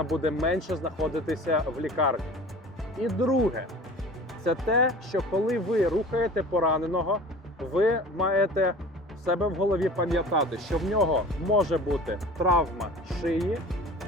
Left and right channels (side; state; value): both; normal; correlation 0.41